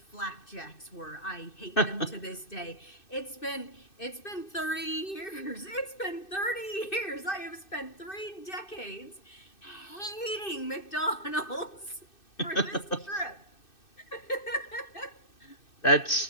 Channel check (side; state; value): right; late; 2.6 ms